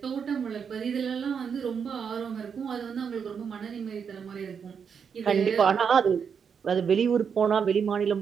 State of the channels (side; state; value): left; quieter; 6.7 dB